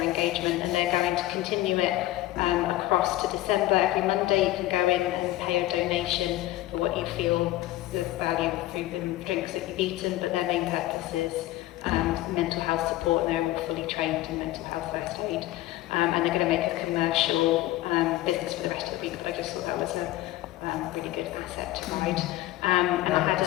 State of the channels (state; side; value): quieter; right; 16.0 dB